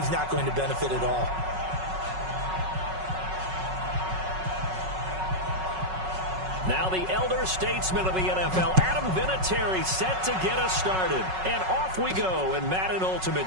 not going to benefit at all. Now the elder statesman of the NFL, Adam Vinatieri, set to get us started. And off we go in Madden Ultimate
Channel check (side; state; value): left; late; 5.4 ms